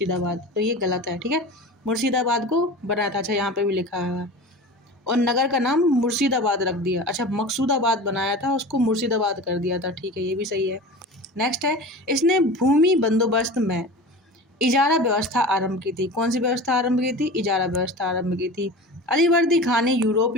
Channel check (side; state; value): both; normal; correlation 0.34